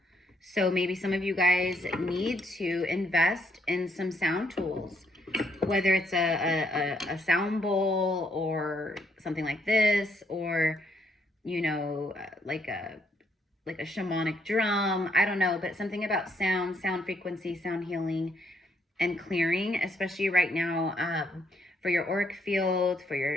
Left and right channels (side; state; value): both; normal; correlation 0.72